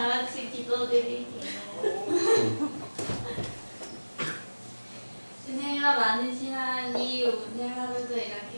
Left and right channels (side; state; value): both; inverted; correlation -1.00